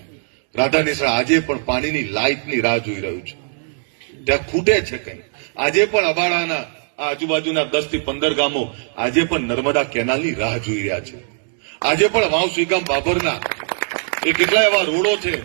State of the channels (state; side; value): silent; left; digital silence